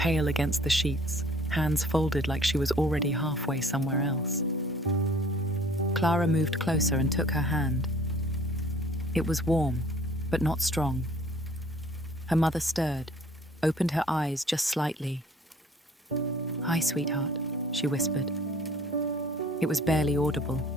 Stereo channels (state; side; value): normal; both; correlation 0.53